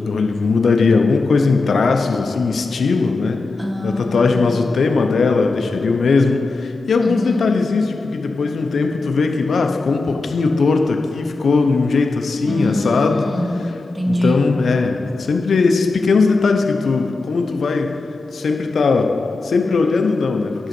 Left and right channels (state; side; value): quieter; right; 3.7 dB